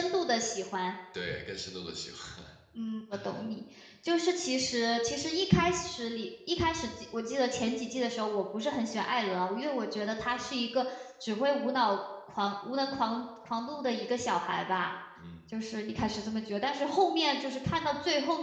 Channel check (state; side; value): identical; both; correlation 1.00